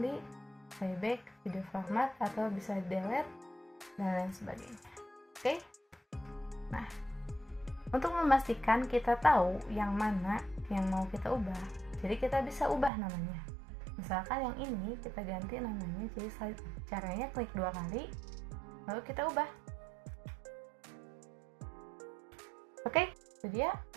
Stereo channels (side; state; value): left; drops out; at 12.9 s